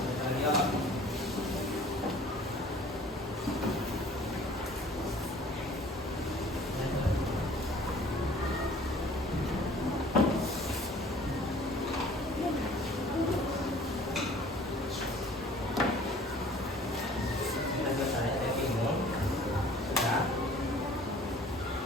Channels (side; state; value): both; normal; correlation 0.51